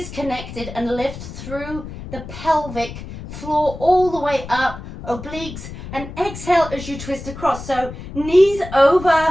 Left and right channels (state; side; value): noise; left; rumble, 11 dB below the sound